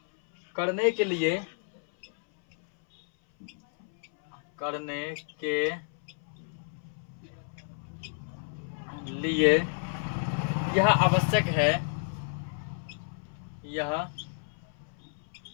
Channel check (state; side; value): silent; right; 57 dB below the other